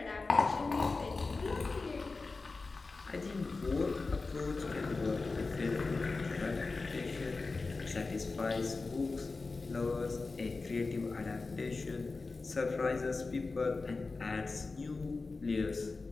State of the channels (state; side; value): quieter; right; 3.8 dB